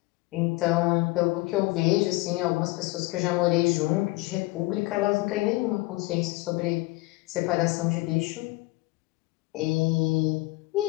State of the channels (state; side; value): quieter; right; 21.3 dB